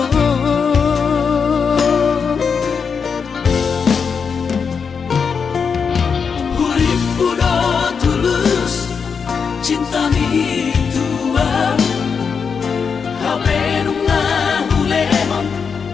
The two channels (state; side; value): quieter; right; 6.0 dB